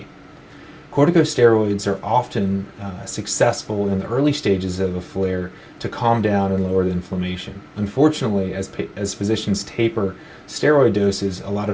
Corticosteroids are often successful in the early stages of a flare to calm down and lower the inflammation. Unfortunately, as physicians taper steroid doses, a lot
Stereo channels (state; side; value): identical; both; correlation 1.00